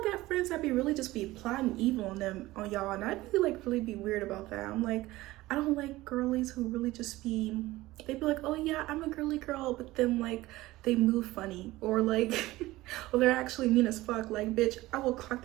got friends that be really just be plotting evil on y'all, and I'd really be weird about that. I'm like, I don't like girlies who really just be, they be like, oh yeah, I'm a girly girl, but then like they move funny, or like or they're actually mean as fuck. Like, bitch, I will clock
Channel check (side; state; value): left; quieter; 18.1 dB